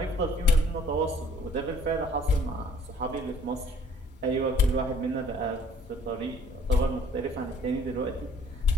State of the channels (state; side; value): normal; both; correlation 0.58